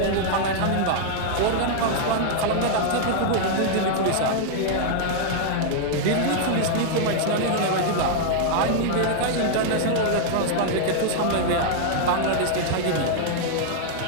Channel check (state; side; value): different; both; correlation -0.01